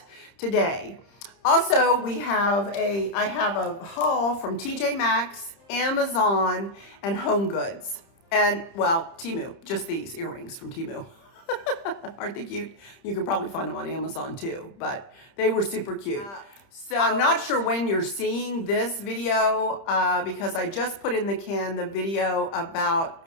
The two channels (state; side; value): late; right; 30 ms